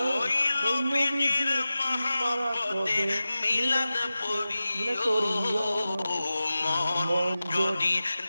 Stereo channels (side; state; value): both; inverted; correlation -0.96